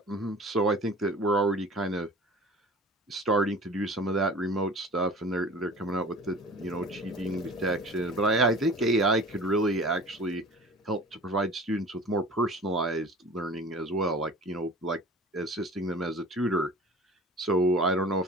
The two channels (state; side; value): normal; both; correlation 0.42